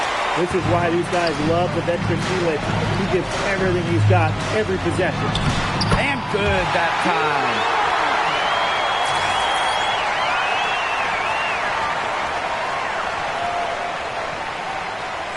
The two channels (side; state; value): both; identical; correlation 1.00